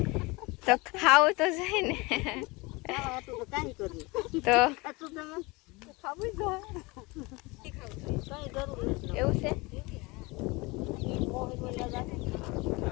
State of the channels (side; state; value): right; quieter; 24.8 dB